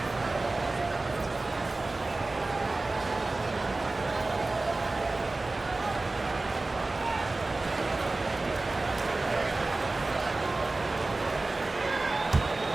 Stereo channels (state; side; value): quieter; left; 3.2 dB